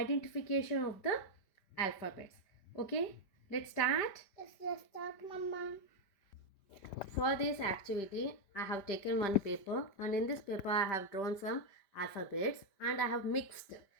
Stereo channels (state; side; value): late; right; 5.1 ms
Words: of the alphabets. Okay, let's start. Let's start, Mama. For this activity, I have taken one paper, and in this paper I have drawn some alphabets and I have mixed